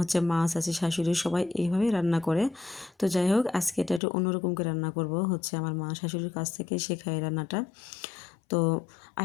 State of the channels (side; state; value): right; drops out; at 4.0 s